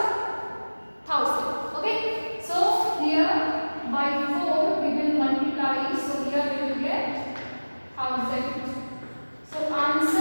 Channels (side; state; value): both; inverted; correlation -1.00